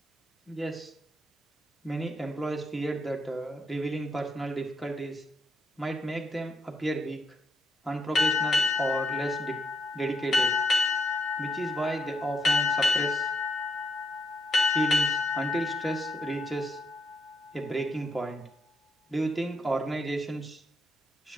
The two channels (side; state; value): both; normal; correlation 0.78